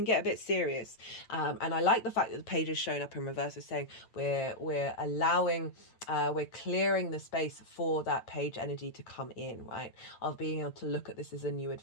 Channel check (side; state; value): right; late; 8.9 ms